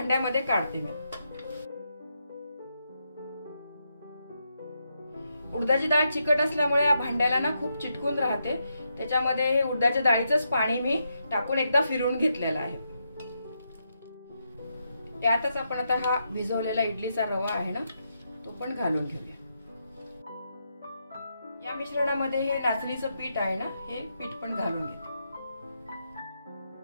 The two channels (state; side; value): inverted; both; correlation -0.82